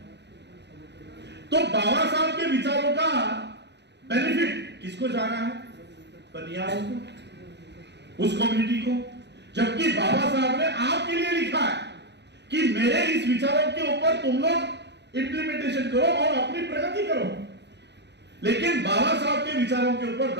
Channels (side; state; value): left; late; 0.50 ms